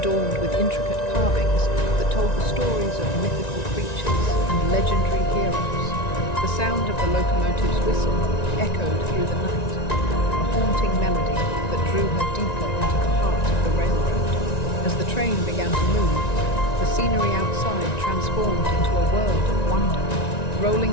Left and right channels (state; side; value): late; right; 1.9 ms